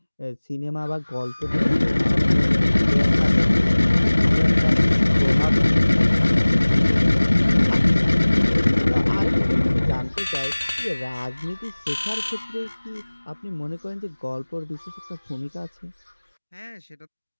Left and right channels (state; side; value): inverted; both; correlation -1.00